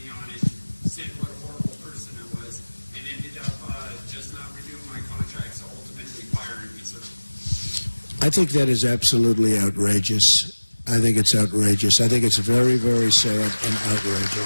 on it, said what a horrible person I was, and ended up just not renewing my contract, so ultimately firing me, sir. I think that is absolutely outrageous. I think it's outrageous. I think it's very, very sad and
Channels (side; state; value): both; inverted; correlation -1.00